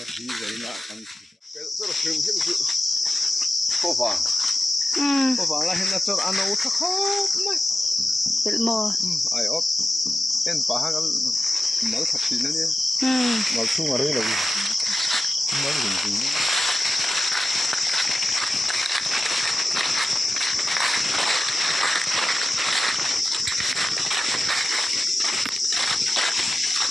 đi giấy lại ăn cái rất là phim hiện sự có vàng là hiện là cho ăn nấu thắc khóc mày bịt mò ai ốp em phá hàng mở thật gì nữa nhé mở xuống ở đây là mở gì nữa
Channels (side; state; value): both; normal; correlation 0.92